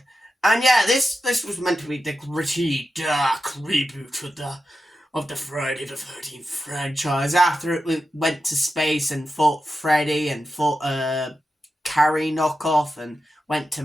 And yeah, this was meant to be the gritty, dark reboot of the Friday the 13th franchise, after it went to space and fought Freddy and fought a Carrie knockoff and went to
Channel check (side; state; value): both; normal; correlation 0.90